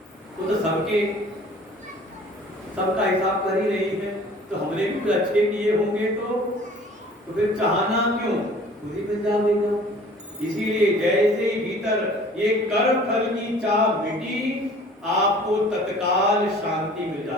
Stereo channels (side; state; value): both; normal; correlation 0.49